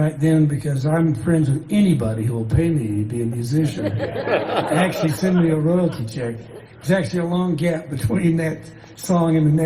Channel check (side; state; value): both; identical; correlation 1.00